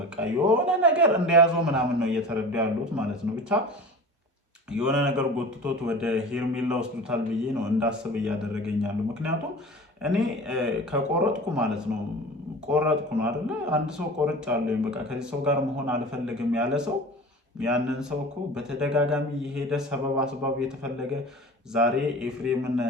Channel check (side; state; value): both; normal; correlation 0.37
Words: የሆነ ነገር እንደያዘው ምናምን ነው እየተረዱ ያሉት ማለት ነው። ብቻ የሆነ ነገር ጎትቶት ወደ ሄርሜላ ወስዱታል ብዬ ነው እንዳስብ እያደረገኛሉ። ምክንያቱም እኔ ከቆረጥኩ ማለት ነው ቆረጥኩ ነው አይደለ? አንድ ሰው ቆርጫለሁ በቃ ከዚህ ሰው ጋር መሆን አልፈልግም ያለ ሰው ያንን ሰው እኮ በተደጋጋሚ የሄደ ሰበብ አስባብ የተፈለገ ዛሬ ኤፍሬምን